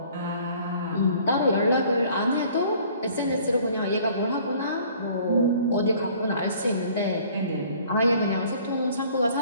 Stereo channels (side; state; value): both; inverted; correlation -0.54